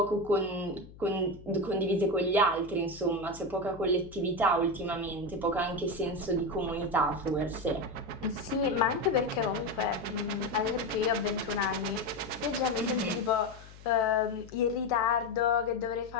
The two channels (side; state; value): left; noise; hum, 19 dB below the sound